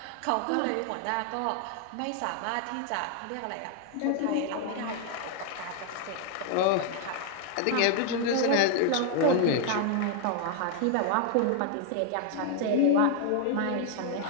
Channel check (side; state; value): both; different; correlation 0.00